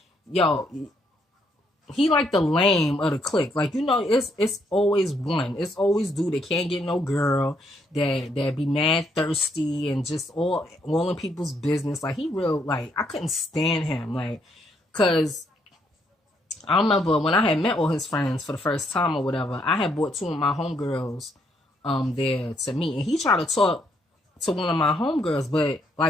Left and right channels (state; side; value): normal; both; correlation 0.73